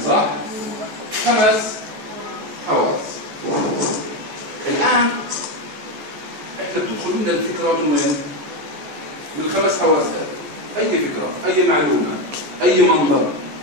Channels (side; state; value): left; late; 14 ms